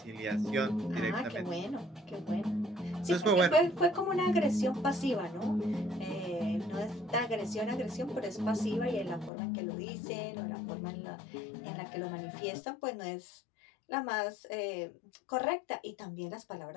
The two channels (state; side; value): drops out; right; at 9.3 s